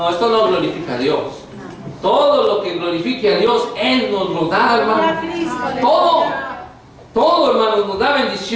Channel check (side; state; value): both; identical; correlation 1.00